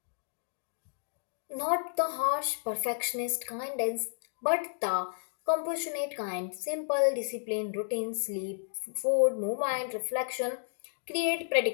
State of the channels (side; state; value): right; silent; digital silence